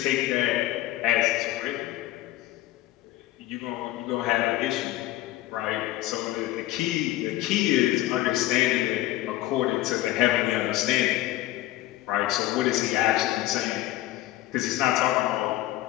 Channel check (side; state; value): right; quieter; 15.6 dB